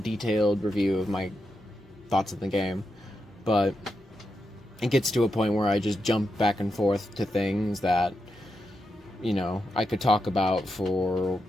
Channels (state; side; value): normal; both; correlation 0.86